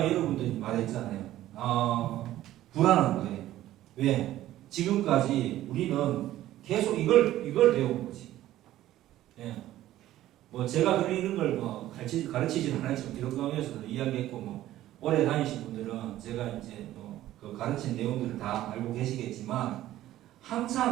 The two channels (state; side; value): quieter; left; 14.1 dB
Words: 여러분들이 말했잖아요. 불안한 거예요. 왜? 지금까지 우리는 계속 이걸 배운 거지. 뭐 제가 그런 걸 가르치지는 않았지만 기독교에서도 이야기했고, 오래 다니신 분들은 제가 이제 그 가르친 내용들을 다 알고 계시겠지만,